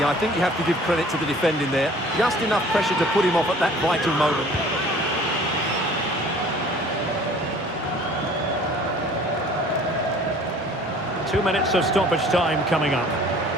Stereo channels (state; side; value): normal; both; correlation 0.50